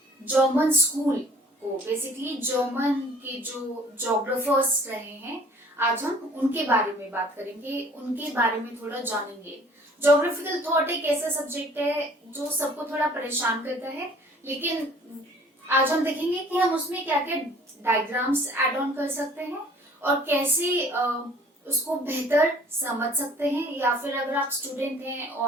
जर्मन स्कूल को। बेसिकली जर्मन के जो जोग्राफर्स रहे हैं, आज हम उनके बारे में बात करेंगे, उनके बारे में थोड़ा जानेंगे। जोग्राफिकल थॉट एक ऐसा सब्जेक्ट है जो सबको थोड़ा परेशान करता है, लेकिन आज हम देखेंगे कि हम उसमें क्या क्या डायग्राम्स ऐड ऑन कर सकते हैं और कैसे उसको बेहतर समझ सकते हैं, या फिर अगर आप स्टूडेंट हैं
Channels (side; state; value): both; normal; correlation 0.53